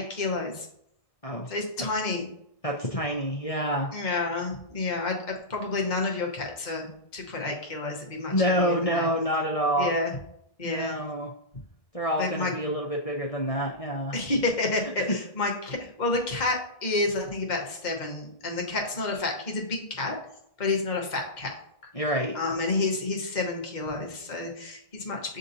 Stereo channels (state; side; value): late; right; 1.6 ms